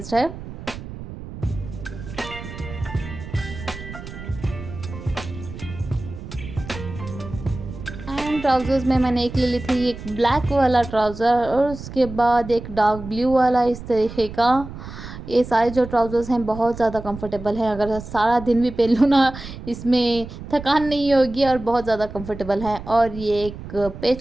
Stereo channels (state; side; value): noise; right; rumble, 12 dB below the sound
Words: है। एंड ट्राउज़र्स में मैंने एक ले ली थी, एक ब्लैक वाला ट्राउज़र, और उसके बाद एक डार्क ब्लू वाला इस तरीके का। ये सारे जो ट्राउज़र्स हैं बहुत ज़्यादा कंफर्टेबल हैं, अगर सारा दिन भी पहन लूँ ना इसमें थकान नहीं होगी, और बहुत ज़्यादा कंफर्टेबल है। और ये एक